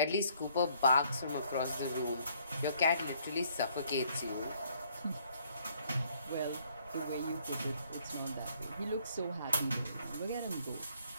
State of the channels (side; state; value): both; inverted; correlation -0.65